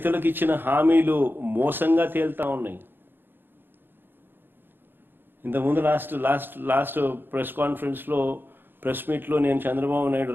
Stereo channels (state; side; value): late; left; 0.099 ms